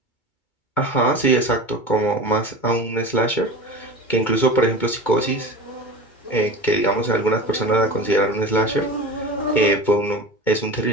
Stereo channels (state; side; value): late; right; 2.2 ms